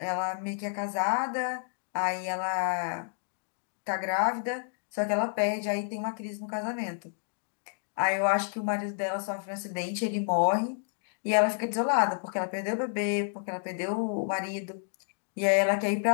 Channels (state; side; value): silent; right; digital silence